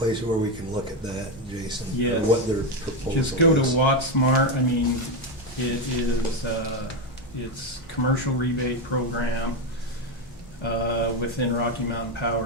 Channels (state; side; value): normal; both; correlation 0.10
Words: where we can look at that, Jason? or Yes. What their proposal is? Just go to WattSmart. I mean, it is, it's commercial rebate program within Rocky Mountain